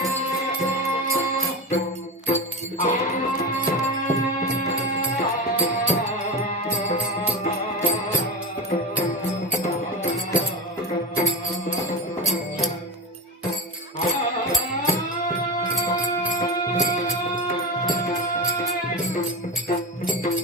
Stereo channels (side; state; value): both; normal; correlation 0.24